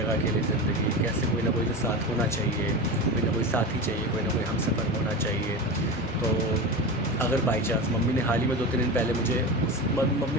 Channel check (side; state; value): both; normal; correlation 0.24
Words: अकेले ज़िंदगी, कैसे कोई ना कोई तो साथ होना चाहिए, कोई ना कोई साथी चाहिए, कोई ना कोई हमसफ़र होना चाहिए। तो अगर बाई चांस मम्मी ने हाल ही में 2-3 दिन पहले मुझे